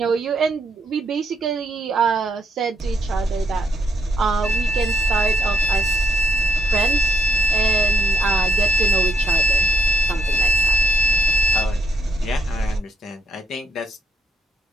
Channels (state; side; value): normal; both; correlation 0.75